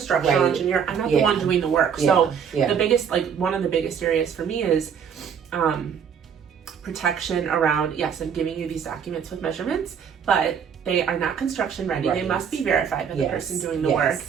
engineer, I'm not the one doing the work. So the biggest, one of the biggest areas for me is protection around, I'm giving you these documents with measurements, but they are not construction ready. They must be verified by the person doing the work.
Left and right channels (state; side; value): quieter; left; 7.4 dB